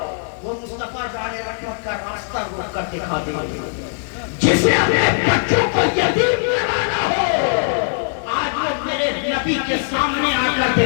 وہ مصطفیٰ جانے رحمت کا راستہ روک کر دکھا دیں گے، جسے اپنے بچوں کو یتیم کرانا ہو آج وہ میرے نبی کے سامنے آ کر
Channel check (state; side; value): silent; right; 66 dB below the other